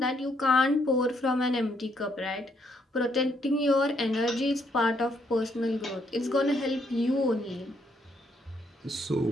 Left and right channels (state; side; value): normal; both; correlation 0.73